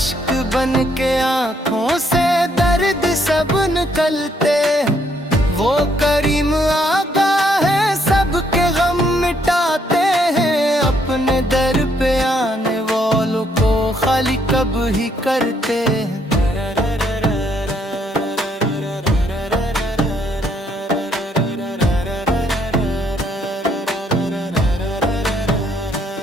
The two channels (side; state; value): both; normal; correlation 0.70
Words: बन के आंखों से दर्द सब निकलते हैं। वो करीम आका है सबके गम मिटाते हैं, अपने दर पे आने वालों को खाली कब ही करते हैं।